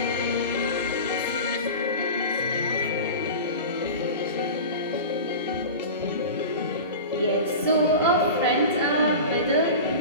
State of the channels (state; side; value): inverted; both; correlation -0.31